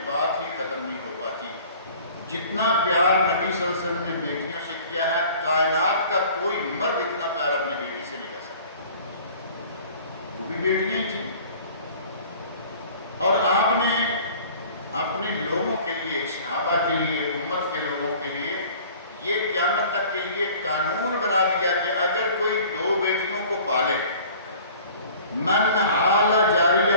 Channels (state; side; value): inverted; both; correlation -0.48